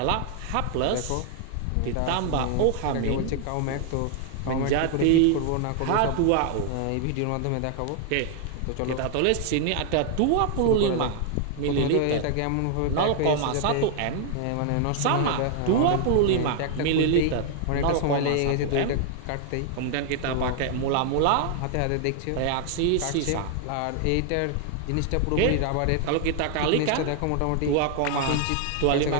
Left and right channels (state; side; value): different; both; correlation 0.00